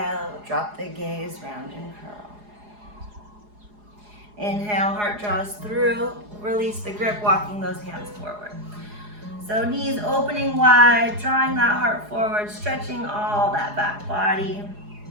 drop the gaze, round and curl. Inhale, heart draws through. Release the grip, walking those hands forward. So knees opening wide, drawing that heart forward, stretching all that back body.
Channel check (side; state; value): left; late; 4.8 ms